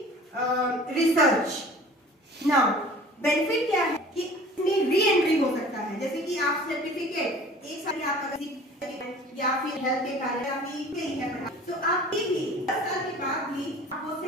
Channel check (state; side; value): normal; both; correlation 0.45